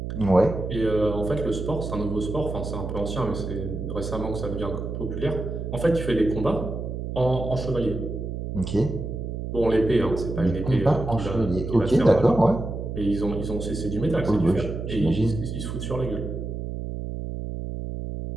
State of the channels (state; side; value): noise; right; hum, 5 dB below the sound